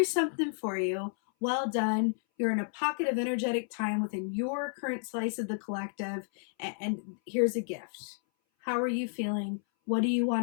something for you. Well done. You're in a pocket of energetic time within your current slice of the collective, and here's a gift. How are you feeling? What do you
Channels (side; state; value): right; silent; 57 dB below the other